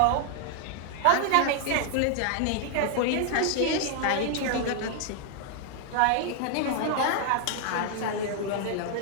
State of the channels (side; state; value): both; different; correlation 0.00